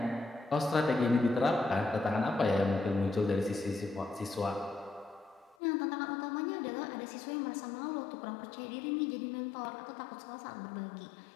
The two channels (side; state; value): right; drops out; at 5.6 s